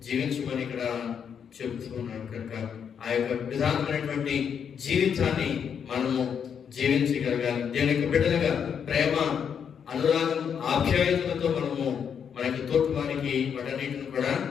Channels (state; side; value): quieter; right; 7.5 dB